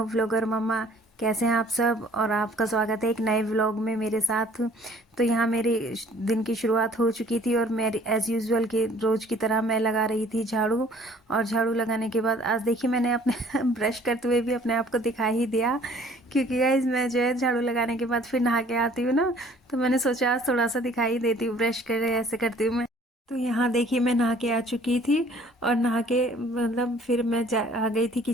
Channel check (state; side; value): normal; both; correlation 0.55